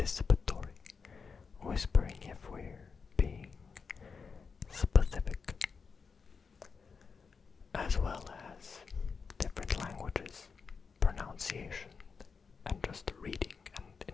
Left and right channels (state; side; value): quieter; right; 5.4 dB